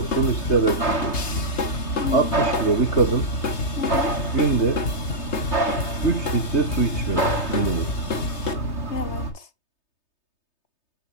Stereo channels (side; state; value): right; late; 3.3 ms